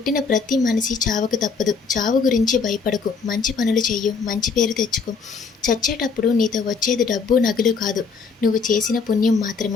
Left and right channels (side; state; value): right; quieter; 5.1 dB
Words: ప్రతి మనిషి చావకు తప్పదు. చావు గురించి భయపడకు. మంచి పనులు చెయ్యు. మంచి పేరు తెచ్చుకో. చచ్చేటప్పుడు నీతో వచ్చేది డబ్బు, నగలు కాదు. నువ్వు చేసిన పుణ్యం